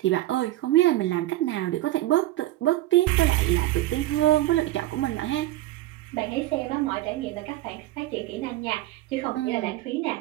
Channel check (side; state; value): left; quieter; 15.9 dB